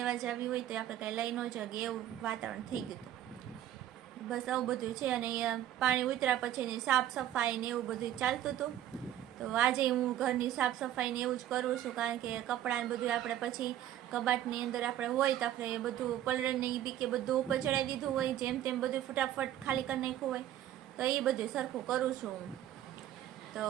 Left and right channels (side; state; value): left; quieter; 12.1 dB